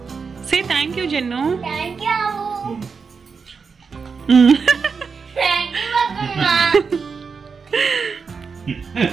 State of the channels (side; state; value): left; quieter; 5.4 dB